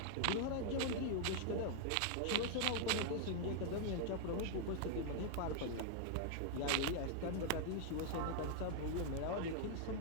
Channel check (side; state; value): both; different; correlation 0.00